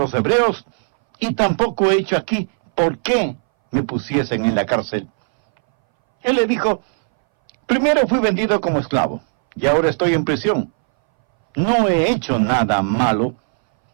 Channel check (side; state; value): left; silent; 63 dB below the other